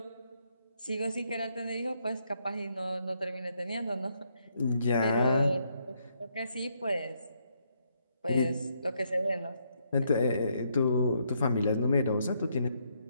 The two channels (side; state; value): both; inverted; correlation -0.75